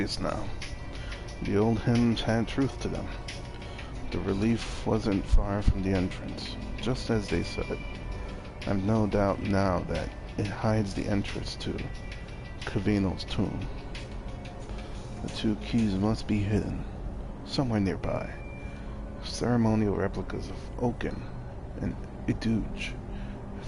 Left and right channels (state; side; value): identical; both; correlation 1.00